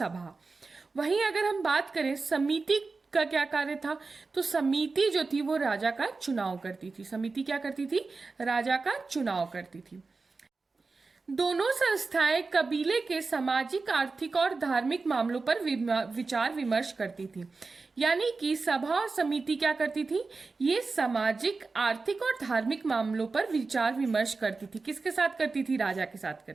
वहीं अगर हम बात करें समिति का क्या कार्य था, तो समिति जो थी वो राजा का चुनाव करती थी। समिति क्या करती थी? राजा का चुनाव करती थी। दोनों संस्थाएं कबीले के सामाजिक, आर्थिक और धार्मिक मामलों पर विचार विमर्श करती थी। यानी कि सभा और समिति क्या करती थी? ये सामाजिक, आर्थिक और धार्मिक मामलों पर विचार विमर्श करती थी। किसके साथ करती थी? राजा के साथ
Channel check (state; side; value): quieter; left; 4.1 dB